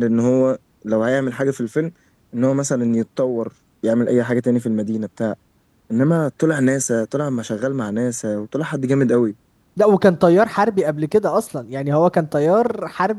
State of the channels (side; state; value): both; identical; correlation 1.00